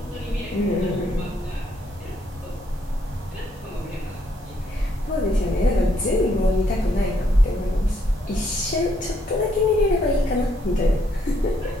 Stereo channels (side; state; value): both; normal; correlation 0.71